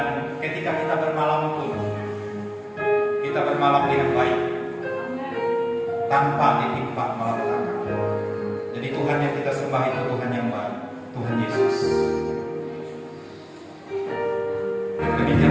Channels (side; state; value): both; identical; correlation 1.00